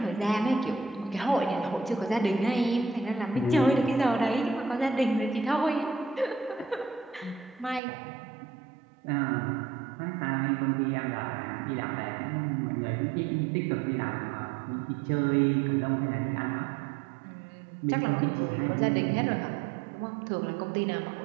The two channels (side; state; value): left; drops out; at 7.8 s